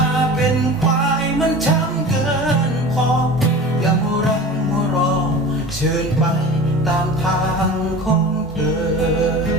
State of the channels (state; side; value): normal; both; correlation 0.36